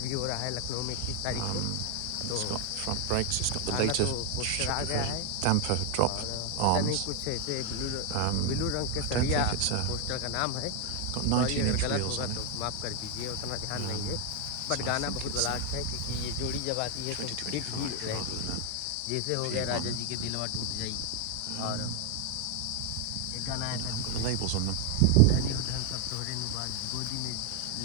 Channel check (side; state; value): both; different; correlation 0.01